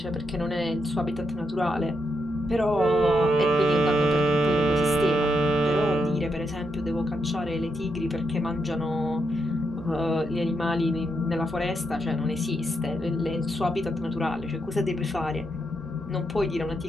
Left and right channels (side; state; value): both; normal; correlation 0.81